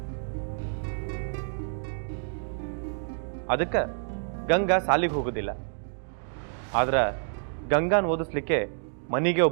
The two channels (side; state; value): left; silent; digital silence